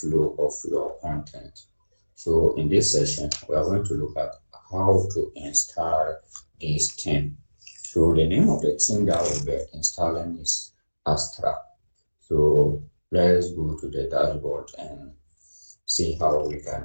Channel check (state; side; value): inverted; both; correlation -1.00